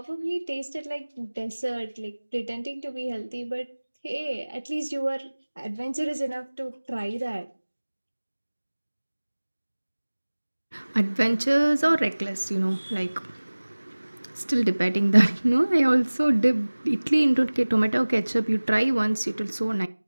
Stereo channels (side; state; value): both; inverted; correlation -1.00